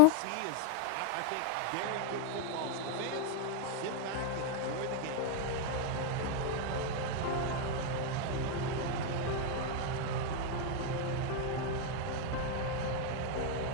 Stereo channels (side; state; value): both; different; correlation 0.01